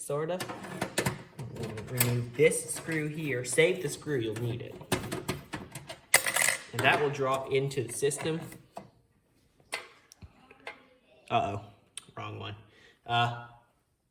of. Remove this screw here. Save the screw, you'll need it. And that will drop into the system. Uh-oh, wrong one.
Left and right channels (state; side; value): identical; both; correlation 1.00